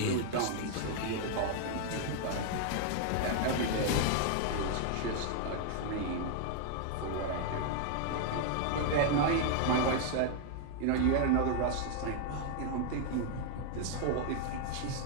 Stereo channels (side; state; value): both; different; correlation 0.00